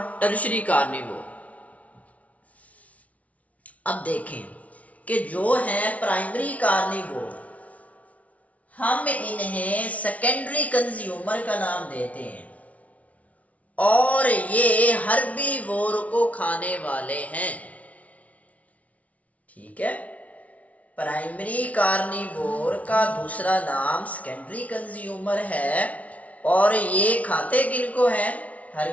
टर्शरी कार्निवोर। अब देखें कि जो है प्राइमरी कार्निवोर, हम इन्हें सेकेंडरी कंज्यूमर का नाम देते हैं और ये हर्बीवोर को खाने वाले हैं। ठीक है, प्राइमरी कार्निवोर का दूसरा नाम सेकेंडरी कंज्यूमर है और ये खाते किनको हैं?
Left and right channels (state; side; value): late; right; 0.068 ms